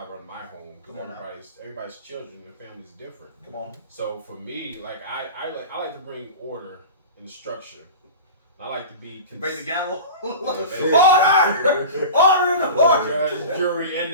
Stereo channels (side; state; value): both; inverted; correlation -0.33